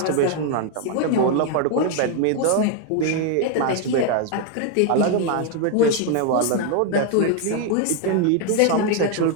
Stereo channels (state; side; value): different; both; correlation 0.01